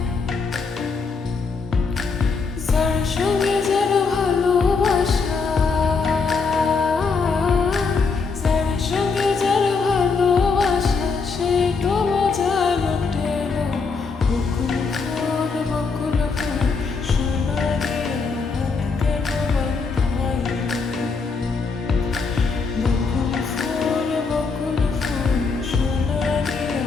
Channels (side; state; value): right; quieter; 4.8 dB